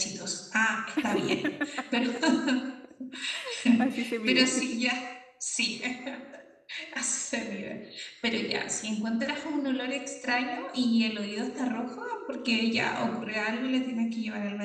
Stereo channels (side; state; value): both; identical; correlation 1.00